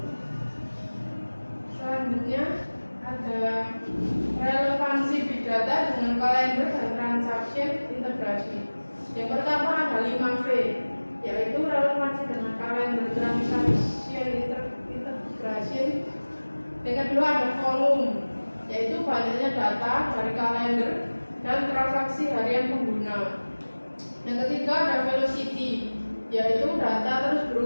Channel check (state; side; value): inverted; both; correlation -1.00